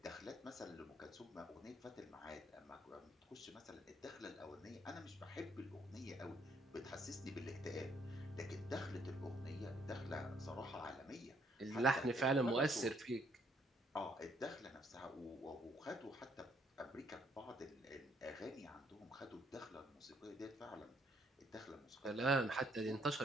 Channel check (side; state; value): both; normal; correlation 0.68